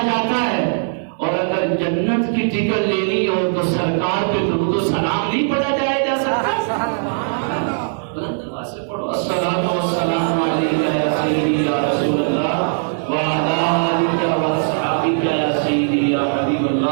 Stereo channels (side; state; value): left; silent; digital silence